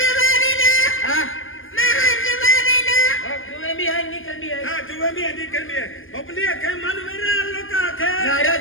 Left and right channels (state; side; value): late; right; 0.59 ms